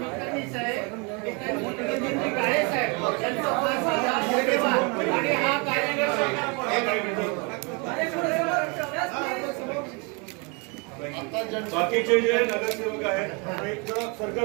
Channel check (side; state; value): left; quieter; 32.1 dB